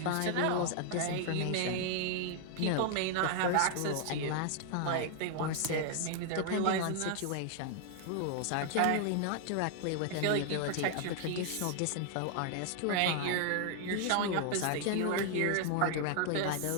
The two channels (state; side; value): different; both; correlation 0.00